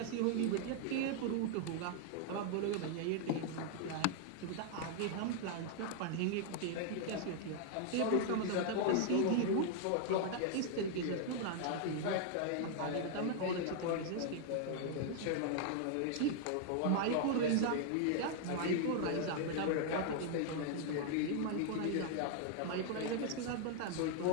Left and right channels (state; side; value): different; both; correlation 0.00